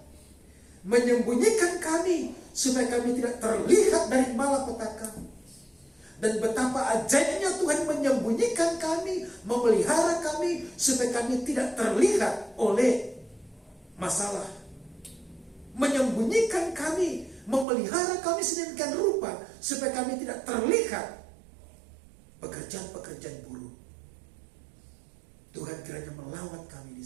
menyembunyikan kami supaya kami tidak terlihat dari malapetaka. Dan betapa ajaibnya Tuhan menyembunyikan kami, memelihara kami supaya kami tidak terlihat oleh masalah. Menyembunyikan kami, memelihara kami sedemikian rupa supaya kami tidak terlihat pekerjaan-pekerjaan buruk. Tuhan kiranya melawat kami di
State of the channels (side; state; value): left; drops out; at 17.7 s